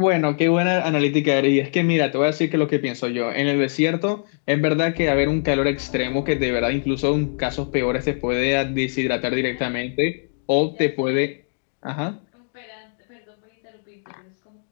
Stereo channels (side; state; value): right; silent; digital silence